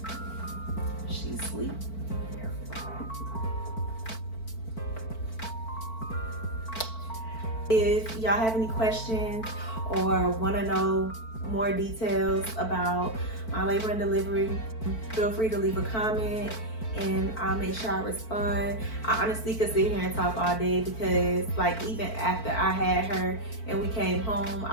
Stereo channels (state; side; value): late; right; 4.5 ms